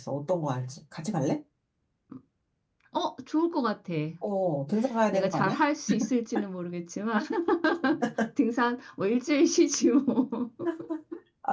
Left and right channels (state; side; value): identical; both; correlation 1.00